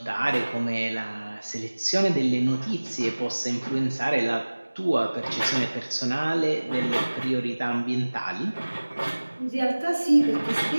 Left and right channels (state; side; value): inverted; both; correlation -1.00